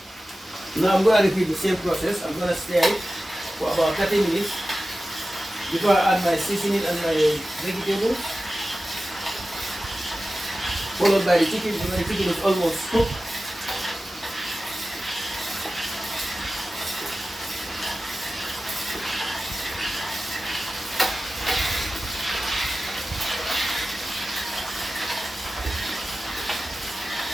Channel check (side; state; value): both; normal; correlation 0.95